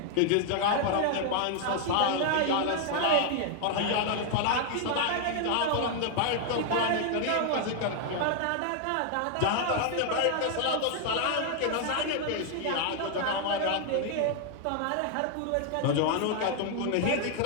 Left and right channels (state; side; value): different; both; correlation 0.00